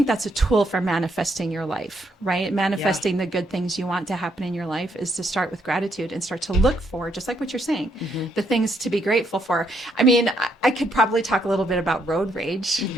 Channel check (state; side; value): normal; both; correlation 0.74